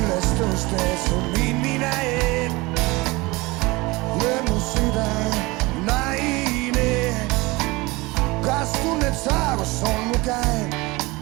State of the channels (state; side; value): quieter; left; 23.0 dB